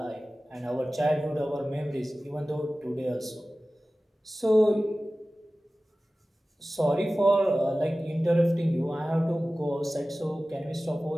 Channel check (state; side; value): normal; both; correlation 0.96